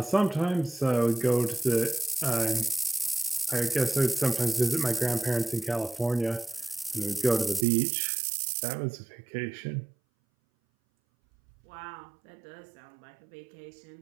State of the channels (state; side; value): drops out; left; at 7.7 s